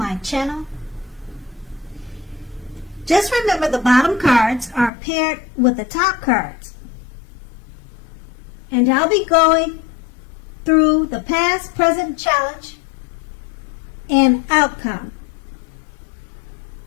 channel. Just remember the bottom cards are paired with the top cards. And I'll be going through the past, present, challenge, and outcome.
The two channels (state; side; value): drops out; right; at 4.9 s